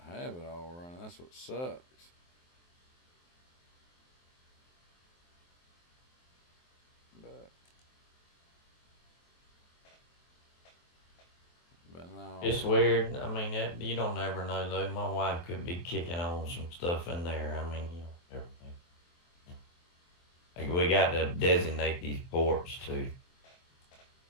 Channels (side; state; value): right; late; 23 ms